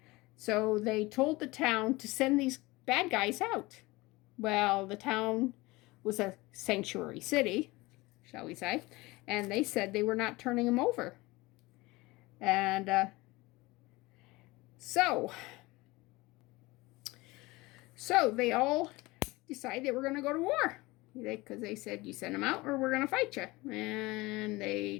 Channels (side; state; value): right; quieter; 21.7 dB